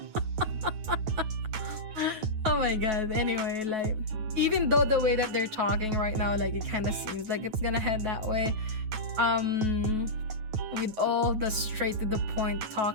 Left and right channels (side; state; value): left; late; 9.3 ms